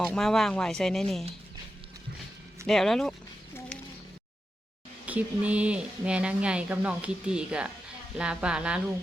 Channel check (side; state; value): both; normal; correlation 0.89